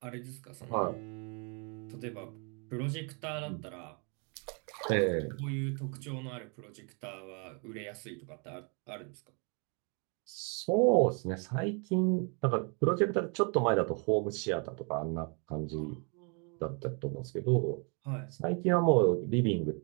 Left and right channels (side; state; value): left; quieter; 36.0 dB